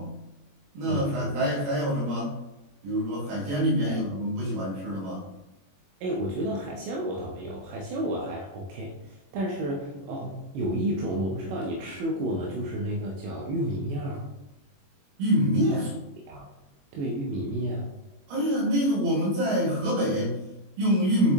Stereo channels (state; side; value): late; left; 21 ms